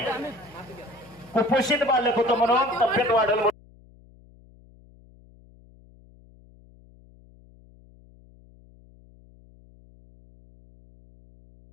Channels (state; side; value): noise; left; hum, 26 dB below the sound